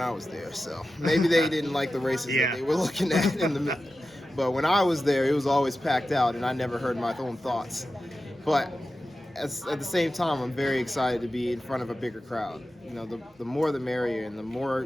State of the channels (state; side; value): normal; both; correlation 0.93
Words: I was there, so maybe they didn't like the races that they were looking at in the. But when I was there, it was always packed out, and I never heard my own thoughts. But at the same time, I'm very excited to be in front of a bigger crowd. The more the merrier, and the